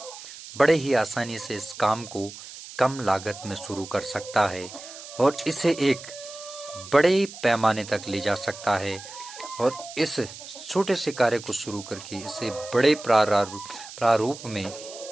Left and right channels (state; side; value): noise; right; hiss, 14 dB below the sound